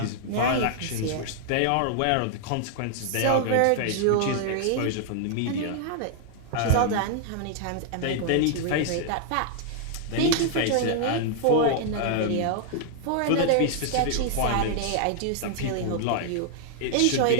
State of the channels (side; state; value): both; different; correlation -0.01